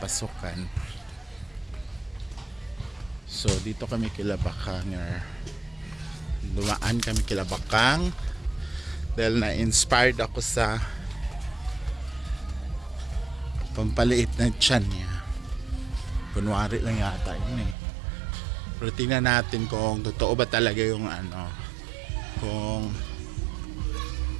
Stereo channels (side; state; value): left; drops out; at 17.8 s